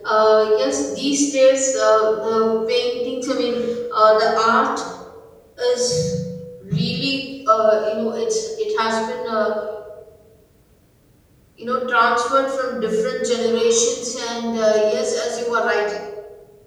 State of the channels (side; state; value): both; identical; correlation 1.00